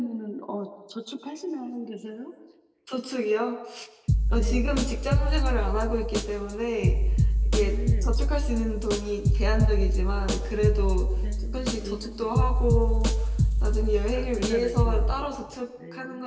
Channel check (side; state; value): both; identical; correlation 1.00